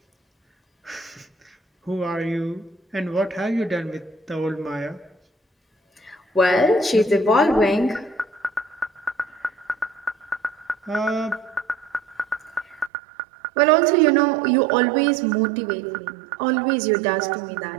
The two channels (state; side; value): drops out; left; at 12.9 s